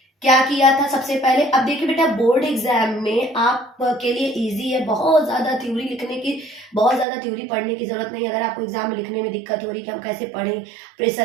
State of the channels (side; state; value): left; drops out; at 7.1 s